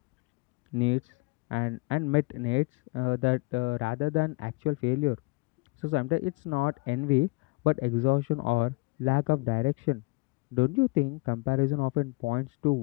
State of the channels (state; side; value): quieter; right; 26.1 dB